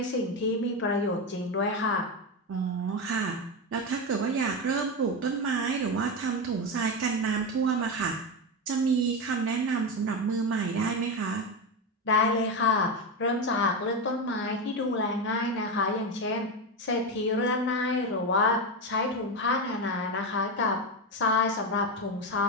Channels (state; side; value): normal; both; correlation 0.14